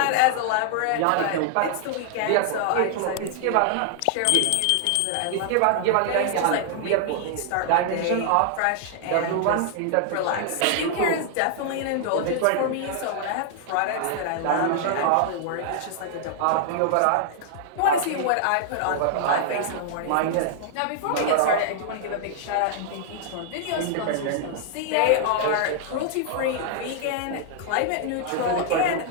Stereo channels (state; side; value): different; both; correlation -0.01